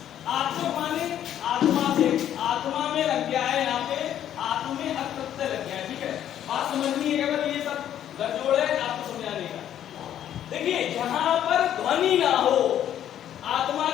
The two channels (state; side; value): quieter; right; 10.7 dB